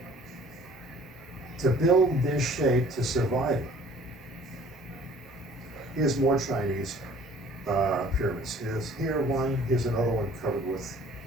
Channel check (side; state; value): both; normal; correlation 0.53